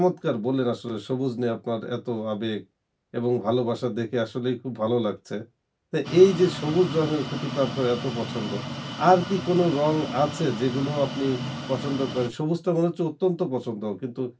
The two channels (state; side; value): identical; both; correlation 1.00